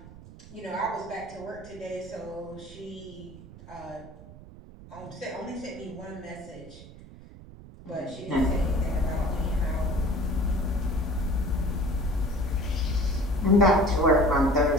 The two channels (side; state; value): right; noise; rumble, 18 dB below the sound